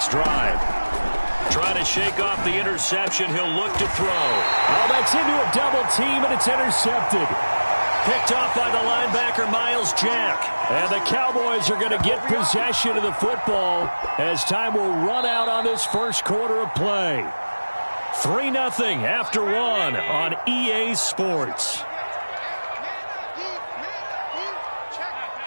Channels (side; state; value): both; inverted; correlation -1.00